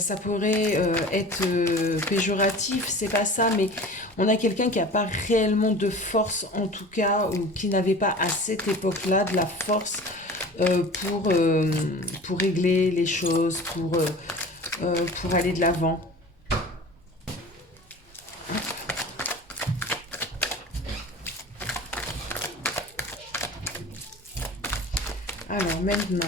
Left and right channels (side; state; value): both; normal; correlation 0.39